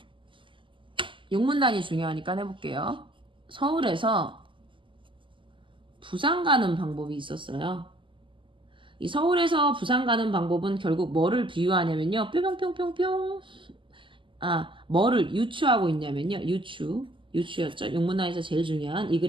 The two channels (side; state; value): left; late; 0.25 ms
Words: 용문단이 중요하니까 해볼게요. 서울에서 부산 가는 방법이 있었어요. 이 서울에서 부산 가는 방법은 결국 뭐를 비유하냐면요. 뿅뿅뿅뿅뿅. 뭐를 유추하고 있냐면요. 유추였죠. 용문단에서 제일 중요한, 이